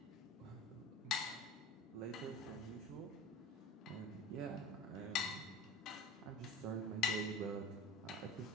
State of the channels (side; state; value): both; normal; correlation 0.36